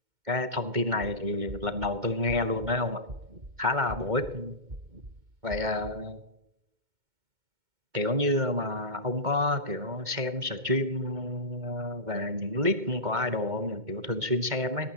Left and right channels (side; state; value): left; late; 2.2 ms